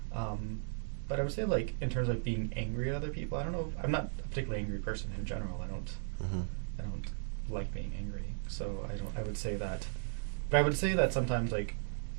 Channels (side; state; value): left; silent; digital silence